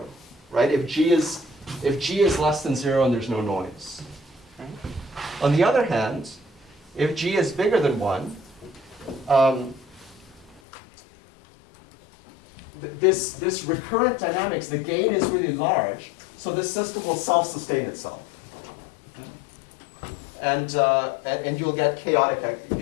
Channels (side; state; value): right; drops out; at 10.6 s